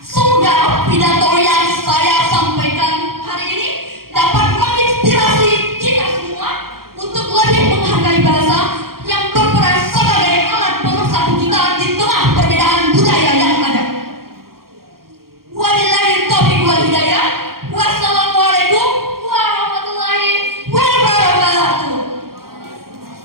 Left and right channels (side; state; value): left; late; 0.93 ms